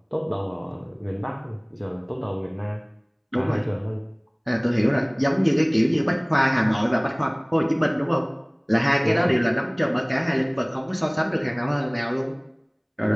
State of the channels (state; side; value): identical; both; correlation 1.00